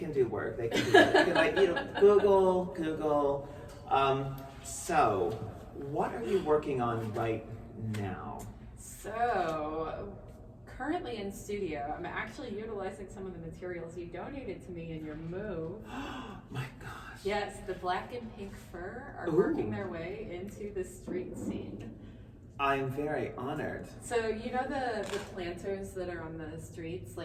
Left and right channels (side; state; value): both; identical; correlation 1.00